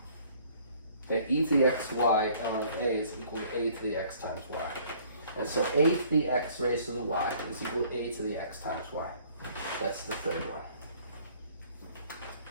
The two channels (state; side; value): inverted; both; correlation -0.57